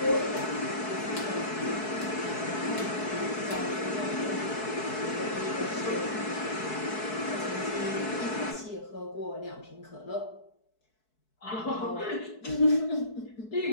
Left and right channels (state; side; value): late; right; 4.6 ms